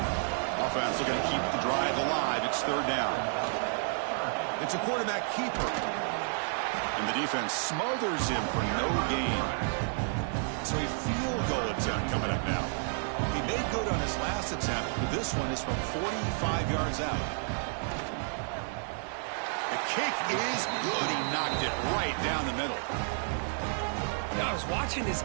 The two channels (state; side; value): silent; left; 57 dB below the other